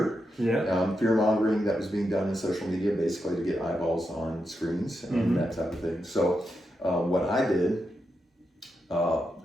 Fear mongering that was being done in social media, basically to get eyeballs on screens and that type of thing. So what I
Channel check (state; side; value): normal; both; correlation 0.86